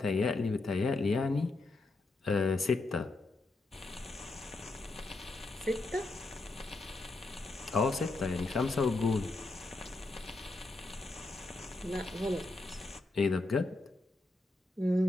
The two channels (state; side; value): quieter; right; 3.1 dB